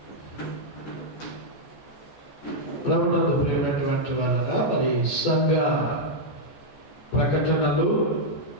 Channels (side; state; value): right; late; 14 ms